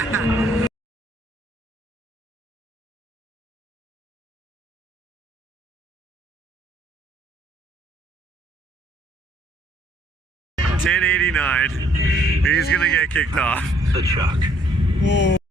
$10.89. He's gonna get kicked off. The chuck.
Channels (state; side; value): normal; both; correlation 0.65